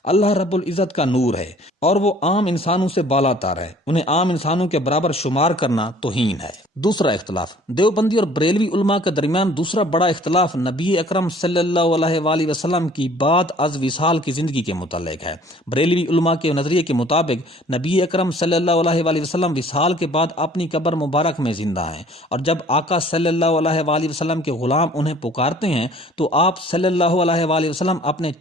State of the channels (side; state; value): both; normal; correlation 0.53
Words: اللہ رب العزت کا نور ہے اور وہ عام انسانوں سے بالا تر ہے، انہیں عام انسانوں کے برابر شمار کرنا توہین ہے۔ دوسرا اختلاف دیوبندی اور بریلوی علماء کے درمیان دوسرا بڑا اختلاف نبی اکرم صلی اللہ علیہ وآلہ وسلم کی بعد از وصال کی زندگی کے متعلق ہے۔ بریلوی علماء کے نظریے کے مطابق نبی اکرم صلی اللہ علیہ وآلہ وسلم وصال کے بعد اپنی قبر مبارک میں زندہ ہیں، اور جب آقا صلی اللہ علیہ وآلہ وسلم کے غلام انہیں پکارتے ہیں تو آپ صلی اللہ علیہ وآلہ وسلم اپنے